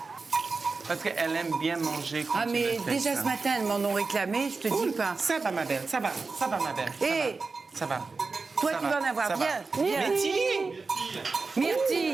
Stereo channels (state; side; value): quieter; left; 4.2 dB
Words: Parce qu'elle aime bien manger quand Ah, tu mais le fais, déjà ça. ce matin, elles m'en ont réclamé, je te dis pas. Ça va, ma belle, ça va, ma belle. ça Hé, va, ça va. toi, Ça tu va, vas en avoir. ça va. Viens, viens. Myrtille!